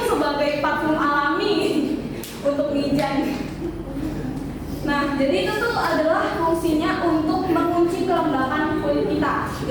sebagai parfum alami untuk mijan. Nah, jadi itu tuh adalah fungsinya untuk mengunci kelembapan kulit kita.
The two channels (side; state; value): both; identical; correlation 1.00